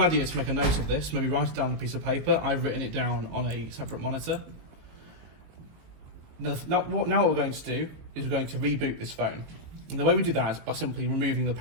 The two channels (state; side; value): late; left; 19 ms